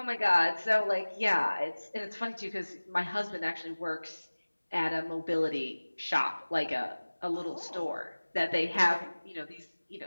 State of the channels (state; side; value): inverted; both; correlation -1.00